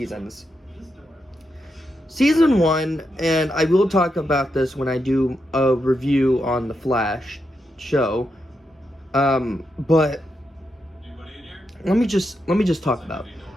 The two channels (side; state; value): both; normal; correlation 0.84